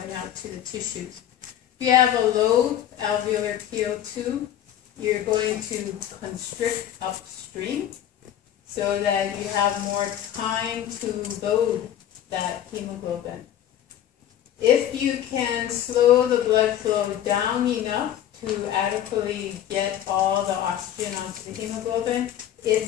out to the tissues. If you have a low alveolar PO2, you're going to constrict upstream so that you have more time to load that hemoglobin. If you can slow the blood flow down enough to adequately get all the oxygen onto the hemoglobin,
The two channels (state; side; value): quieter; right; 11.0 dB